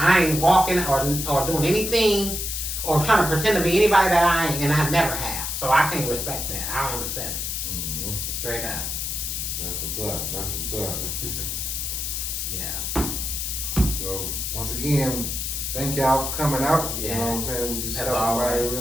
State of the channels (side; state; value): left; noise; hiss, 3 dB below the sound